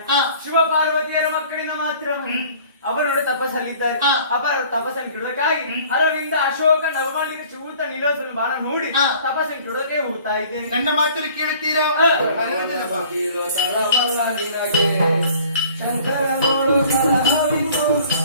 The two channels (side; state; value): both; inverted; correlation -0.51